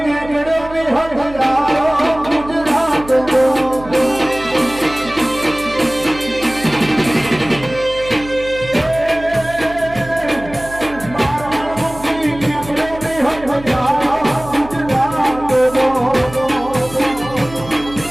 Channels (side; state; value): right; noise; hum, 16 dB below the sound